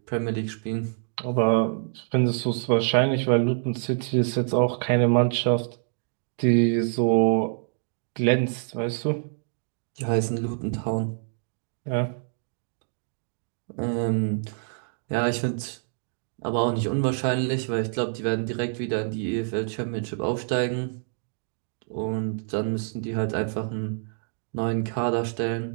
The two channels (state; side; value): silent; left; digital silence